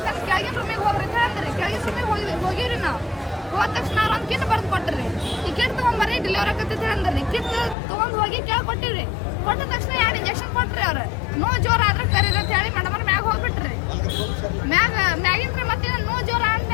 ಕೆಳಗಿನ ರೂಮಿಗೆ ಹೋಗ್ರಿ ಅಂತ ಅಂದ್ರಿ. ಕೆಳಗಿನ ರೂಮಿಗೆ ಹೋಗಿವ್ರಿ. ನಾವು ಹೋದ ತಕ್ಷಣ ಅವ್ರು ಒಂದು ಕಿಟ್ ಬರ್ದು ಕೊಟ್ರಿ. ಈ ಕಿಟ್ ತೊಗೊಂಬರ್ರಿ ಡೆಲಿವರಿ ಆಕತ್ತೈತಿ ಅಂದ್ರಿ. ಕಿಟ್ ತೊಗೊಂಡು ಹೋಗಿ ಕೇಳಿ ಕೊಟ್ಟಿರಿ. ಕೊಟ್ಟ ತಕ್ಷಣ 2 ಇಂಜೆಕ್ಷನ್ ಕೊಟ್ರಿ. ಅವ್ರು ನೋವು ಜೋರ ಆದ್ರೆ ಕರೀರಿ ಅಂತ ಹೇಳಿ ಮೇಡಮ್ ಅವ್ರ ಮ್ಯಾಗ ಹೋಗ್ಬಿಟ್ರಿ. ಮ್ಯಾಗಿಂದ್ರೆ ಮತ್ತೆ ನೋವು ಜೋರ ಅಂತ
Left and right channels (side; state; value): right; drops out; at 7.8 s